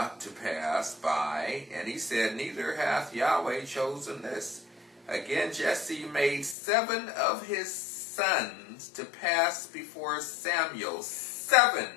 to pass by, and he said, Neither hath Yahweh chosen this. Again Jesse made 7 of his sons to pass before Samuel,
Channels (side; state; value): right; drops out; at 6.6 s